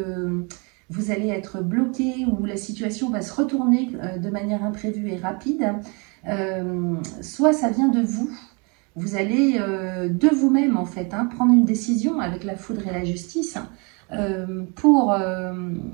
vous allez être bloqué ou la situation va se retourner de manière imprévue et rapide. Soit ça vient de vous. Vous allez de vous-même en fait hein, prendre une décision avec la foudre et la justice pour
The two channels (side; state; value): left; quieter; 32.0 dB